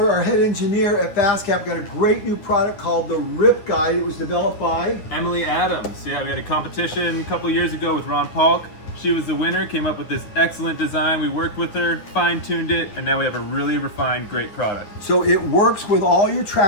our head engineer at FastCap, got a great new product called the Rip Guide. It was developed by Emily Adams. Yeah, we had a competition a couple years ago with Ron Paulk. She was the winner, came up with this excellent design. We worked with her, fine-tuned it, and now we have a really refined, great product. So it works with all your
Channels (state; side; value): late; right; 9.4 ms